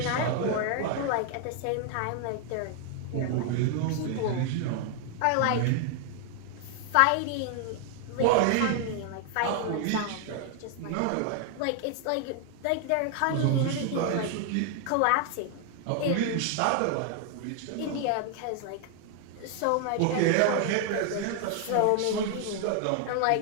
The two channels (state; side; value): different; both; correlation 0.00